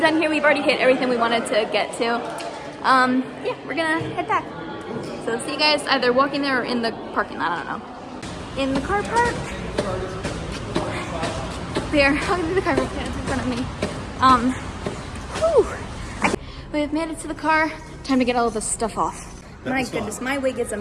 done here. We've already hit everything we wanted to get to. Yeah, we're gonna head back. So see you guys either walking there or in the parking lot, I don't know. In the car park. There, walking through the car park, it's in front of me. Whew. We have made it to the car. Time to get all of this stuff off. My goodness, my wig is a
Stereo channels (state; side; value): identical; both; correlation 1.00